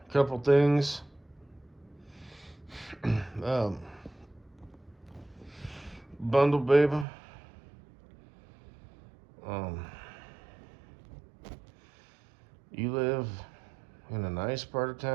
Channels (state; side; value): drops out; left; at 7.1 s